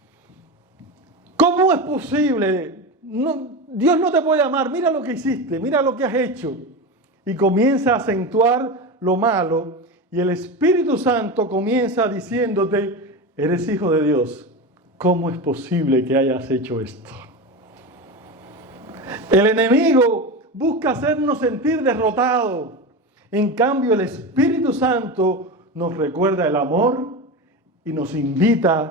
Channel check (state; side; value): normal; both; correlation 0.22